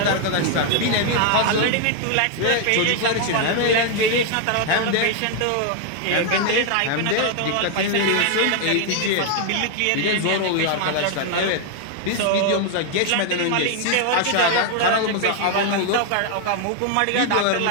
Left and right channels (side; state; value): both; different; correlation 0.00